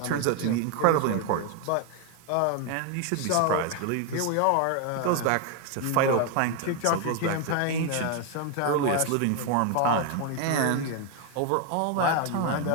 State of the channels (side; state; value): both; different; correlation 0.01